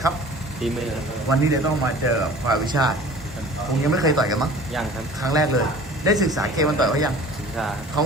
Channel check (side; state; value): both; normal; correlation 0.44